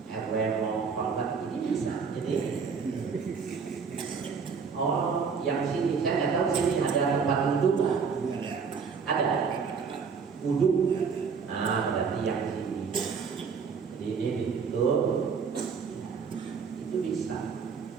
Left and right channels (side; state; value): left; quieter; 5.7 dB